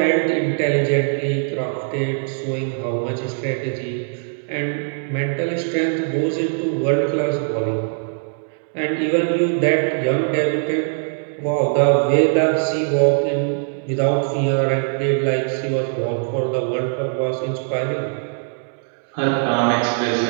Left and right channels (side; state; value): left; silent; digital silence